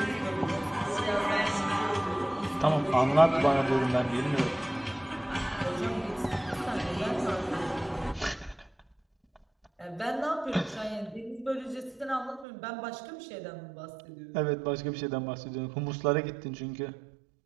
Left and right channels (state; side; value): drops out; left; at 12.5 s